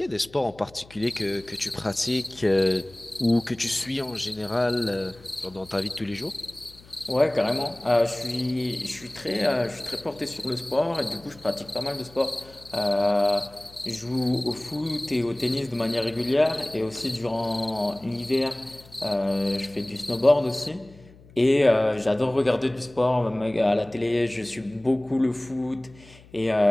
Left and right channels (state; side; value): noise; left; hum, 23 dB below the sound